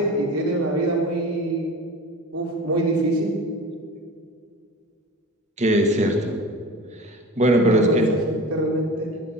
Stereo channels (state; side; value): normal; both; correlation 0.35